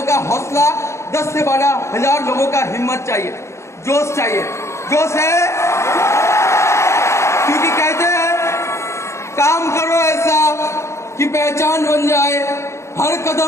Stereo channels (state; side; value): late; right; 0.14 ms